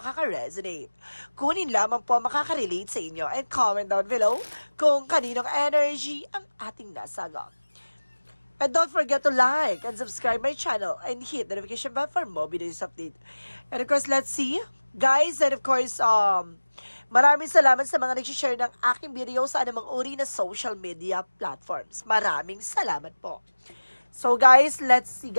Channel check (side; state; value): both; inverted; correlation -1.00